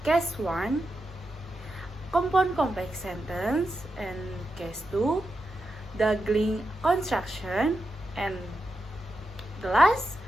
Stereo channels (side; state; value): both; normal; correlation 0.88